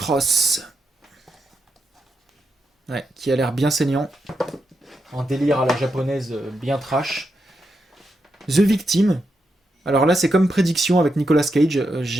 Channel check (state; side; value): normal; both; correlation 0.84